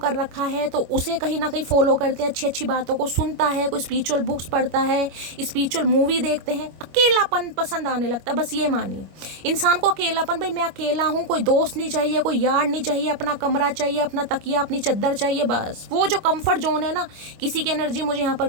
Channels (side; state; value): left; late; 25 ms